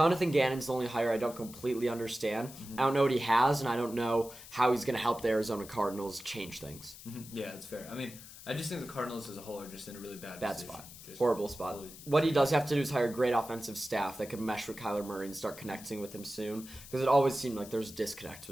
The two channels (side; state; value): left; noise; hiss, 16 dB below the sound